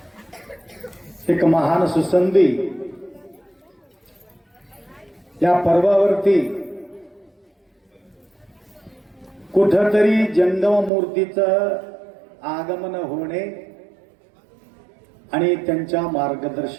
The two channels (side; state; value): left; drops out; at 10.9 s